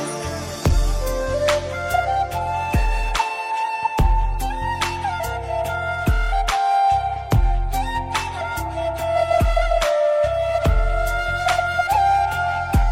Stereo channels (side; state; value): both; identical; correlation 1.00